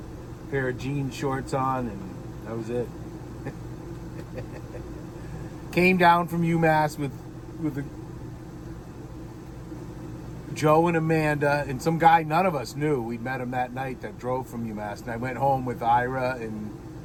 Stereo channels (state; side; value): identical; both; correlation 1.00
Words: pair of jean shorts on, and that was it. Came down from UMass with Joe and Amanda and some guy none of us knew. We'd met him that night that drove from UMass. And I went home with Ira and